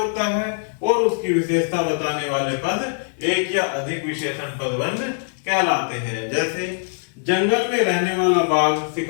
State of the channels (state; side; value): silent; right; digital silence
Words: है और उसकी विशेषता बताने वाले पद एक या अधिक विशेषण पदबंध कहलाते हैं। जैसे जंगल में रहने वाला बाघ